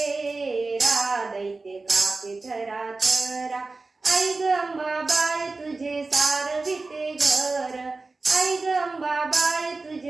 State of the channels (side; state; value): left; quieter; 3.6 dB